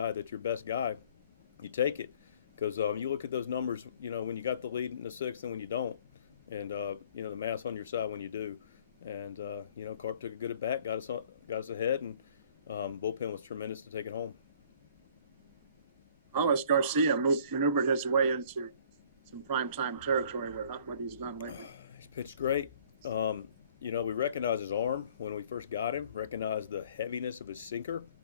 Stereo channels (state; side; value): inverted; both; correlation -0.55